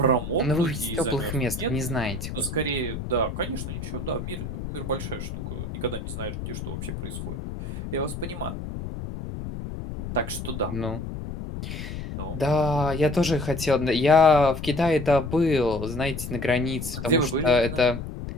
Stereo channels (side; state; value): left; noise; rumble, 7 dB below the sound